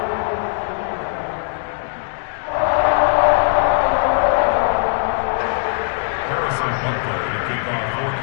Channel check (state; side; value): silent; right; digital silence